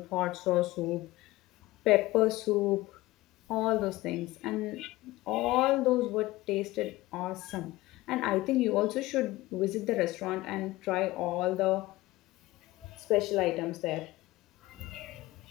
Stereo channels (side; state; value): right; quieter; 18.7 dB